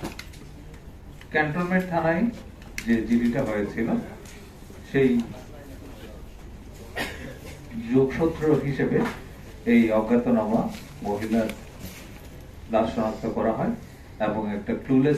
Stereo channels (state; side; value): identical; both; correlation 1.00